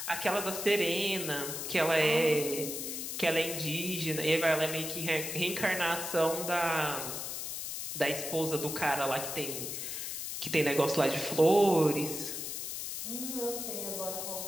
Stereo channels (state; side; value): noise; left; hiss, 5 dB below the sound